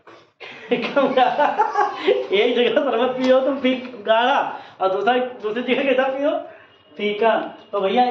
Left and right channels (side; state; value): both; identical; correlation 1.00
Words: कम गाढ़ा। एक जगह शरबत पियो तुम गाढ़ा, और दूसरी जगह कैसा पियो? फीका। तो भैया